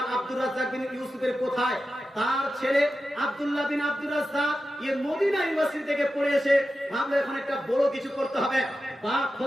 আব্দুর রাজ্জাক বিন ইউসুফের কোথায়? তার ছেলে আব্দুল্লাহ বিন আব্দুর রাজ্জাক মদিনা ইউনিভার্সিটি থেকে পড়ে এসে ভাবলো এখন একটা বড় কিছু করতে হবে। বাপ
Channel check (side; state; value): both; normal; correlation 0.92